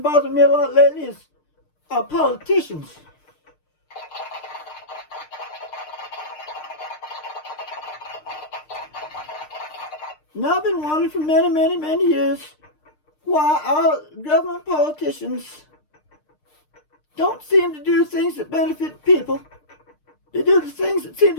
bothering me a lot lately is our politicians. Now I've been wondering for many, many, many years why our government politicians don't seem to do things that benefit people. They do the things that seem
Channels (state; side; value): late; right; 6.6 ms